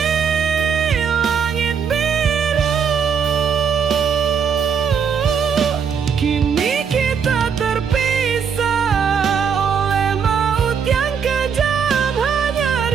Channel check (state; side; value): quieter; left; 6.7 dB